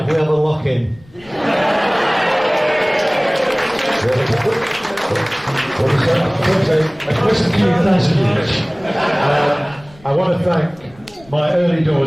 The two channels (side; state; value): left; noise; rumble, 26 dB below the sound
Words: if we have a lock-in? I want to thank my early